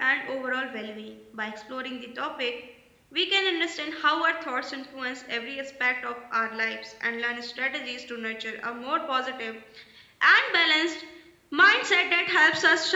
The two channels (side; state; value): both; identical; correlation 1.00